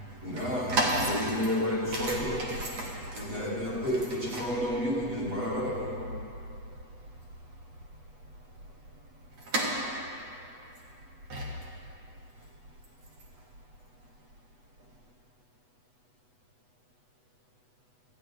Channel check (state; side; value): late; left; 8.1 ms